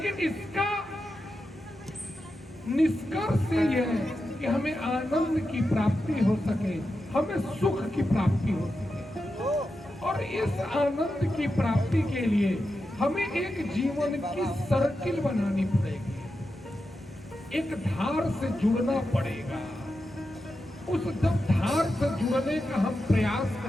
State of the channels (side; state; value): both; normal; correlation 0.89